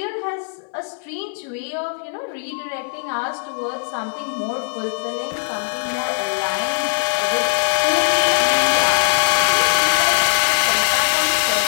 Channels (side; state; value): right; silent; digital silence